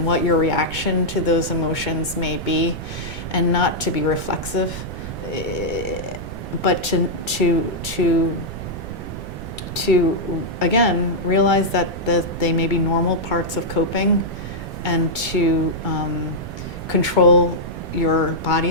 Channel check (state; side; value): noise; right; rumble, 9 dB below the sound